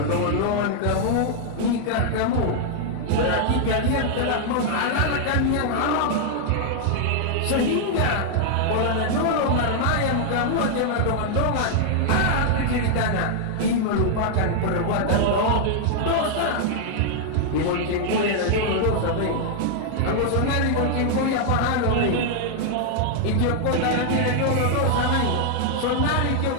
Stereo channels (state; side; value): different; both; correlation -0.01